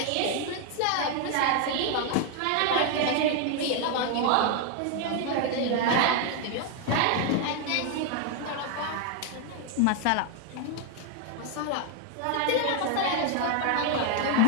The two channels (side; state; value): both; different; correlation 0.01